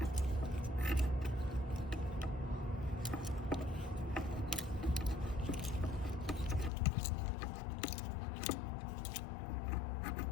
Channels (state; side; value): drops out; right; at 6.7 s